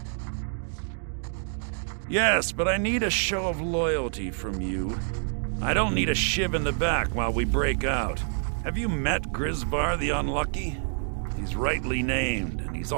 Yes, but I need a show of loyalty from you. I don't need a shiv in the back while we break out. Have you met Grisvar the Unlucky? He's rightly named, and he's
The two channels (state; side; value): silent; left; 60 dB below the other